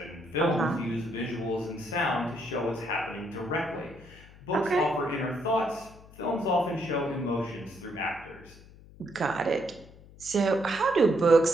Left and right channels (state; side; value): noise; left; hum, 21 dB below the sound